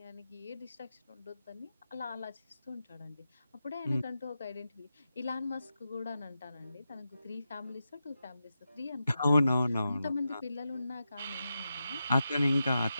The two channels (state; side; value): inverted; both; correlation -0.89